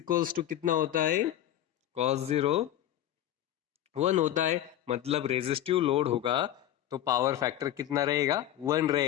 to कितना होता है? कॉस जीरो 1 होता है। मतलब रेजिस्टिव लोड होगा तो पावर फैक्टर कितना रहेगा? 1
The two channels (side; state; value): right; quieter; 12.1 dB